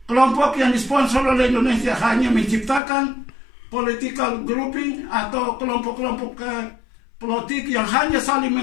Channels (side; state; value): right; drops out; at 2.8 s